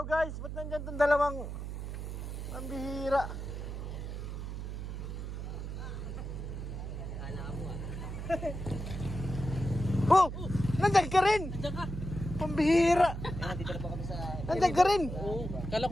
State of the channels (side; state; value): right; noise; hum, 6 dB below the sound